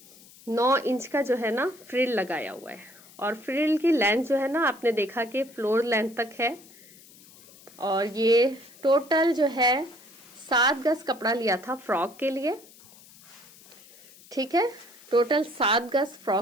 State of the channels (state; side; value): noise; left; hiss, 23 dB below the sound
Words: 9 इंच का जो है ना फ्रिल लगाया हुआ है, और फ्रिल की लेंथ जो है ना आपने देखा कि फ्लोर लेंथ तक है। और ये टोटल जो है 7 गज कपड़ा लिया था फ्रॉक के लिए। ठीक है, टोटल 7 गज